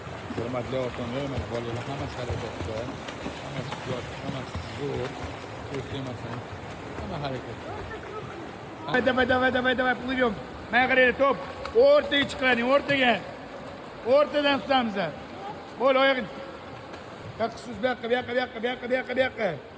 Hurmatli otalar, mana bolalar hammasi harakatda. Hammasi suzyapti, hammasi zo'r. Ko'rsamasam. Hamma harakat. Давай, плывем. Mana qaraylik, top. O'rtaga chiqaring, o'rtaga. O'rtadan tutamiz. Bo'l, oyog'ing. Yoqsiz bu yoqqa.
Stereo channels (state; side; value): identical; both; correlation 1.00